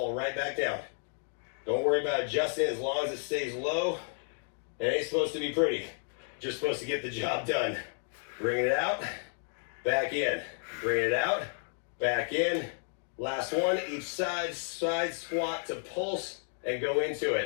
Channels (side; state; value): right; silent; 56 dB below the other